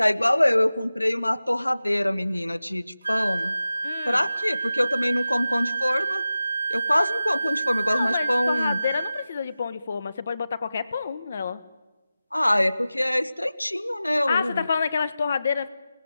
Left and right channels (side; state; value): both; inverted; correlation -0.94